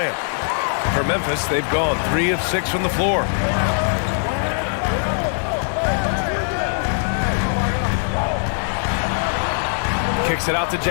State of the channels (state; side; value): silent; right; 65 dB below the other